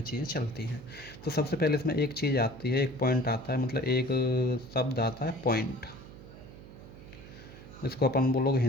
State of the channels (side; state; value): right; noise; hum, 17 dB below the sound